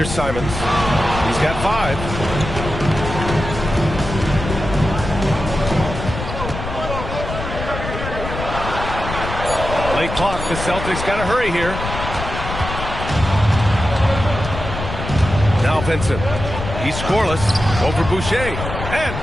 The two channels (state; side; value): noise; left; rumble, 7 dB below the sound